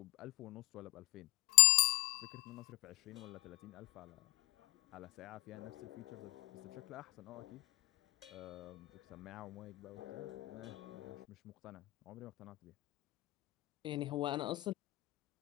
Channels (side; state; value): right; quieter; 23.0 dB